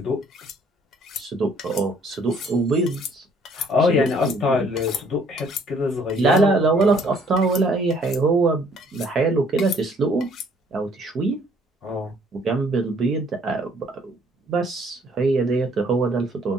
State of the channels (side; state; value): both; normal; correlation 0.61